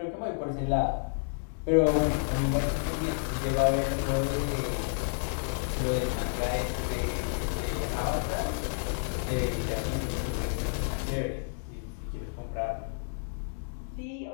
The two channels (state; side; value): silent; right; digital silence